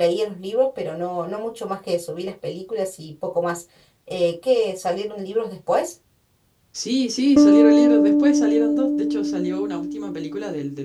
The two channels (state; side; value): identical; both; correlation 1.00